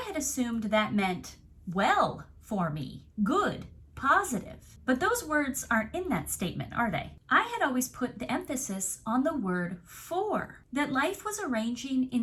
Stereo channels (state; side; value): identical; both; correlation 1.00